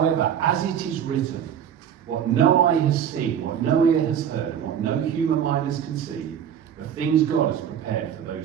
as it is written, what no eye has seen, what no ear has heard, and what no human mind has conceived, the things God has prepared for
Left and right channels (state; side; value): quieter; left; 9.0 dB